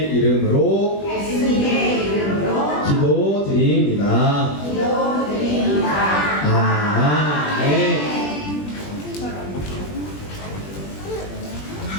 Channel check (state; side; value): late; right; 20 ms